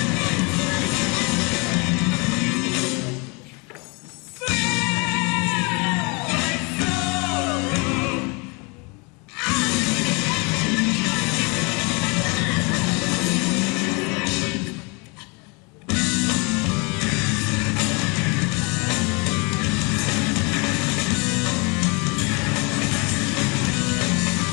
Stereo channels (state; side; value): quieter; right; 30.3 dB